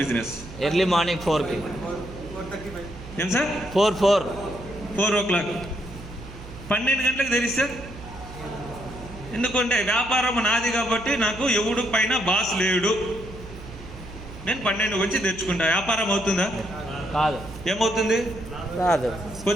బిజినెస్? ఎర్లీ మార్నింగ్ 4కి. ఏం సార్? 4 o'clock. 12 గంటలకు తెరిస్తే, ఎందుకంటే వ్యాపారం నాది కాబట్టి నాకు ఎవడు పైన బాస్ లేడు, నేను 12 వచ్చి తెచ్చుకుంటా. వ్యాపారం అవుతుందా? కాదు. ఏమవుతుంది? కాదు.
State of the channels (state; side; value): noise; right; hum, 15 dB below the sound